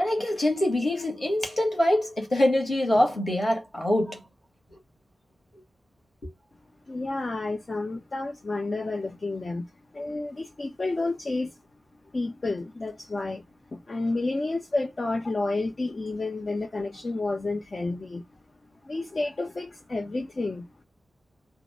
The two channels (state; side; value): normal; both; correlation 0.95